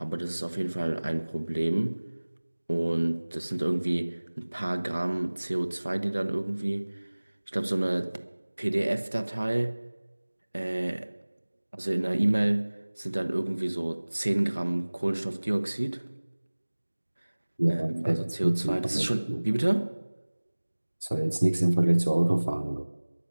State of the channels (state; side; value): inverted; both; correlation -1.00